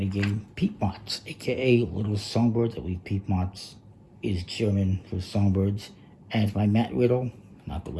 game Piepmatz, aka Little Songbirds. I believe Piepmatz is German for Songbirds. And it's by Matt Riddle, not the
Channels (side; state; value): both; identical; correlation 1.00